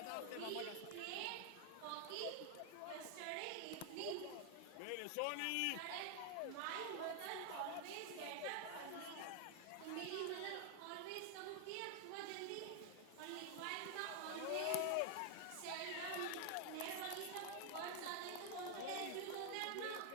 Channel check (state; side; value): different; both; correlation 0.00